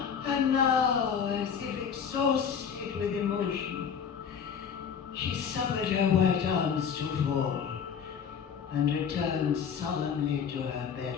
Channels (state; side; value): quieter; right; 7.2 dB